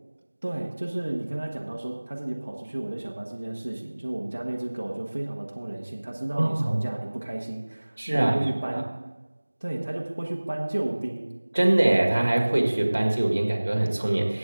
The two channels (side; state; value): both; inverted; correlation -1.00